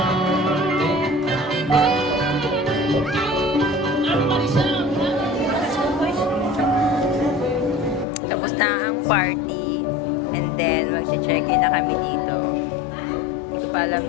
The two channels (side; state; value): right; drops out; at 8.1 s